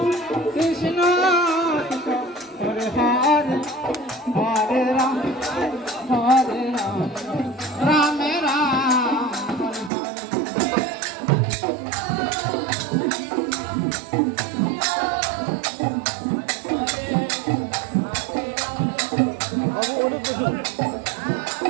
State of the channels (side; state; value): left; drops out; at 9.9 s